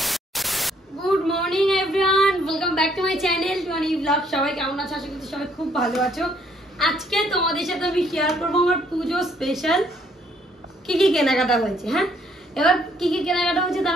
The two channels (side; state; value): both; normal; correlation 0.67